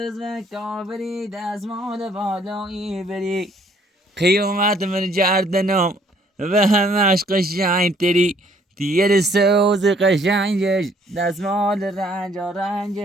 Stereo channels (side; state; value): both; normal; correlation 0.63